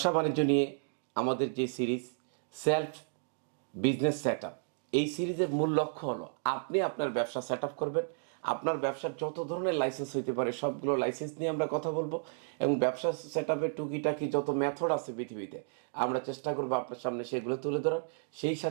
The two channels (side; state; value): left; silent; digital silence